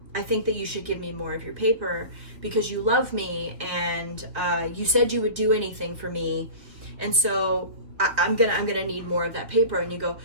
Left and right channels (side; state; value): left; late; 3.0 ms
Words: I think that you should give me more of your paper because you love me, and you said you would do anything for me, and so I'm gonna need more of that paper. And you go,